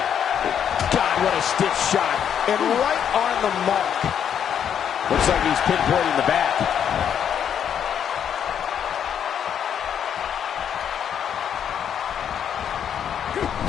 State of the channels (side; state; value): right; quieter; 8.6 dB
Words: God, what a stiff shot. And right on the mark. Looks like he's pinpointing the back.